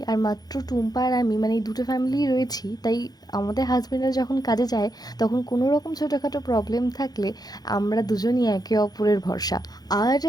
আর মাত্র টুম্পা আর আমি, মানে এই 2টো ফ্যামিলিই রয়েছি, তাই আমাদের হাজব্যান্ডরা যখন কাজে যায় তখন কোনো রকম ছোটোখাটো প্রবলেম থাকলে আমরা দুজনই একে অপরের ভরসা। আর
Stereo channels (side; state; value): right; late; 0.19 ms